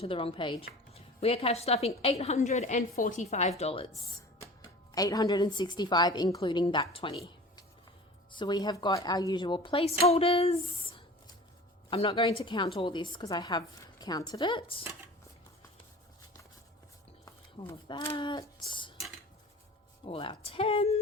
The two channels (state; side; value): normal; both; correlation 0.39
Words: the wrong page. We are cash stuffing $845. $865 including that 20. So we have got our usual placeholders. I'm not going to count all this because I have counted it. All of that. All our